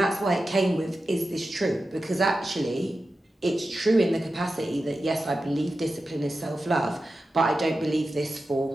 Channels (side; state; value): both; normal; correlation 0.92